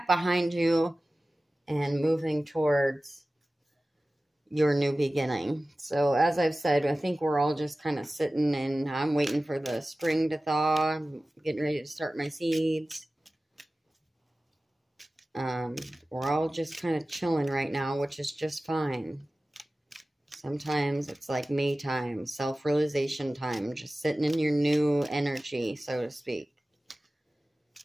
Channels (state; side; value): normal; both; correlation 0.96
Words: behind you and moving towards your new beginning. So as I've said, I think we're all just kind of sitting and I'm waiting for the spring to thaw. I'm getting ready to start my seeds. We're all just kind of chilling right now, which is just fine. Sometimes it's like me time, self-realization time, just sitting in your new energy, so to speak.